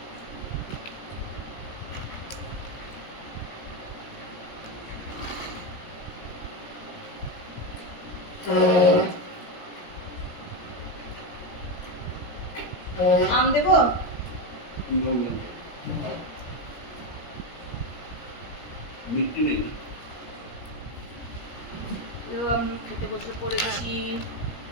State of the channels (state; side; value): late; right; 17 ms